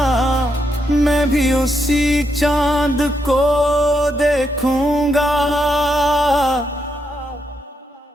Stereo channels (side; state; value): both; normal; correlation 0.80